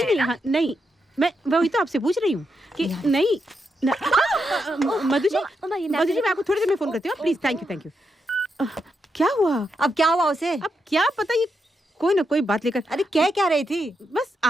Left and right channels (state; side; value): normal; both; correlation 0.83